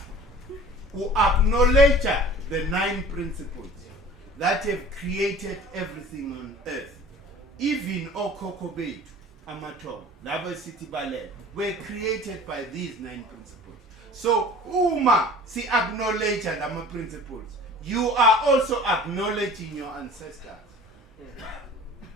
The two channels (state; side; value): normal; both; correlation 0.44